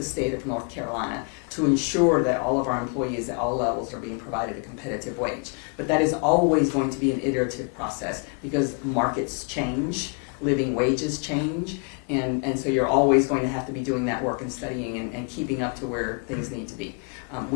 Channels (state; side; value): quieter; right; 37.9 dB